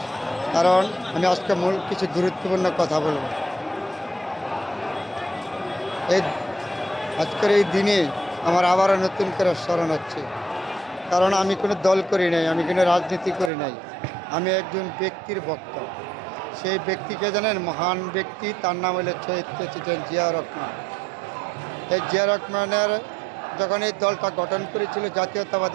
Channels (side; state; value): left; drops out; at 13.5 s